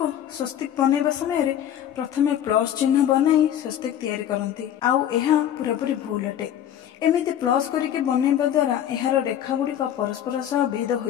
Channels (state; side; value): quieter; right; 10.5 dB